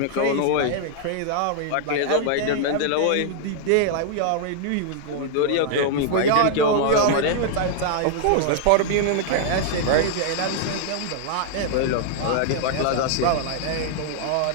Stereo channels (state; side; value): different; both; correlation -0.01